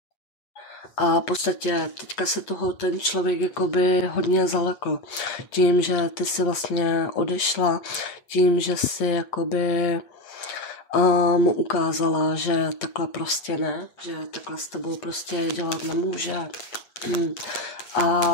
A v podstatě teďka se toho ten člověk jakoby hodně zalekl. Tím, že ty si vlastně odešla, tím, že si jakoby mu ukázala, že takhle prostě ne, že takhle s tebou prostě dělat nemůže.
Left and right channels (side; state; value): right; late; 8.6 ms